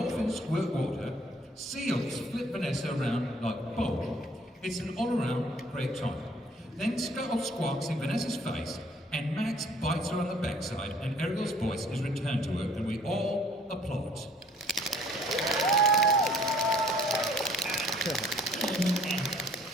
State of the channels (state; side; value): normal; both; correlation 0.58